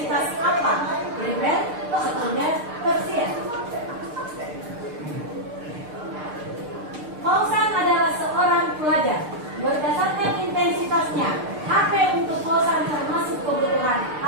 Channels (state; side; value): late; left; 6.6 ms